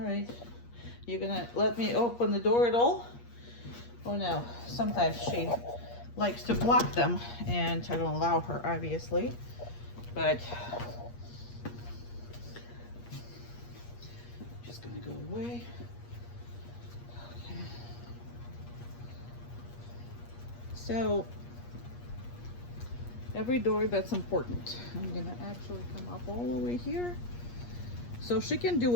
you're gonna let me open the door at all? Oh no, sometimes she likes to block them and I don't allow her, obviously, but just gonna go away. Okay. So every door, that's important. I'm gonna actually come up all the way here. So she can do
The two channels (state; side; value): late; right; 8.4 ms